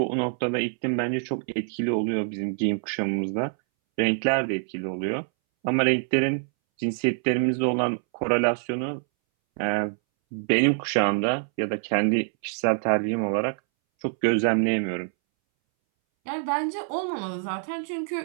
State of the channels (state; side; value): silent; left; 61 dB below the other